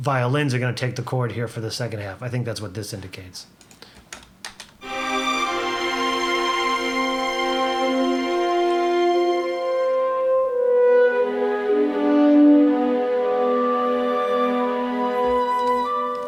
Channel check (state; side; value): identical; both; correlation 1.00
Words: violins are going to take the chord here for the second half. I think that's what this indicates.